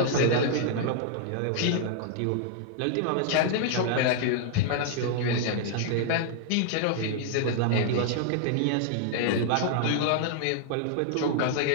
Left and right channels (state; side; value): different; both; correlation -0.01